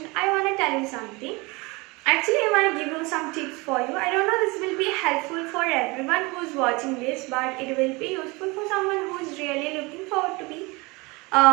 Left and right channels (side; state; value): left; quieter; 25.2 dB